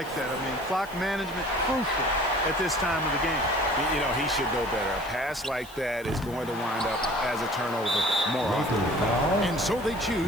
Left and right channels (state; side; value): noise; left; hiss, 21 dB below the sound